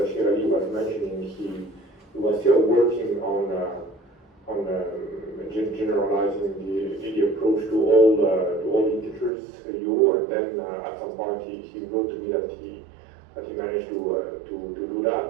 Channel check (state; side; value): drops out; left; at 9.3 s